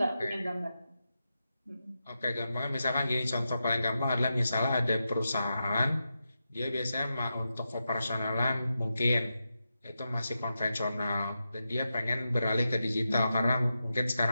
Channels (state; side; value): inverted; both; correlation -0.89